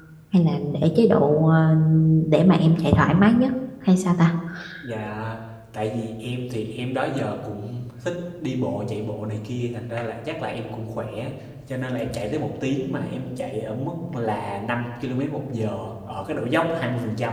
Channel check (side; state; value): both; identical; correlation 1.00